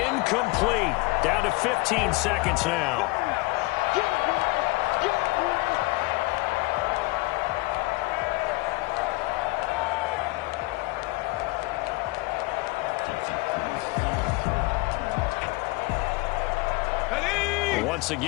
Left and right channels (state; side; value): quieter; right; 23.0 dB